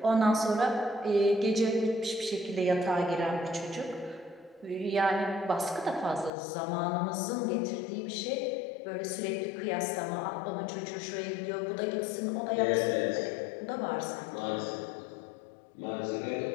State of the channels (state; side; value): drops out; right; at 6.3 s